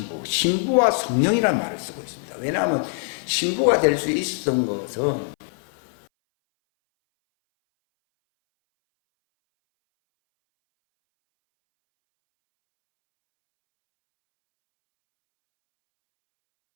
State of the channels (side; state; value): right; silent; 61 dB below the other